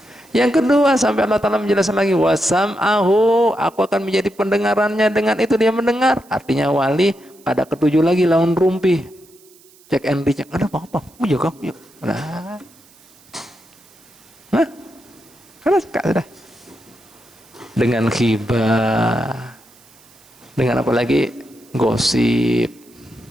Yang kedua, sampai Allah Ta'ala menjelaskan lagi, wasam'ahu, aku akan menjadi pendengarannya, dengan itu dia mendengar. Artinya wali pada ketujuh lagi lawan rumpi, cek and recheck, ada apa-apa, jaga, nah, karena suka sudah. Dengan khibah, dengan apa lagi, gosip,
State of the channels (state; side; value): noise; right; hiss, 27 dB below the sound